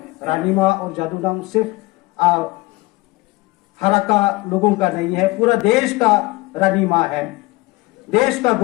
रानी माँ और जादूनाम सिर्फ हराका लोगों का नहीं है, पूरा देश का रानी माँ है, देश का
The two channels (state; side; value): quieter; right; 21.9 dB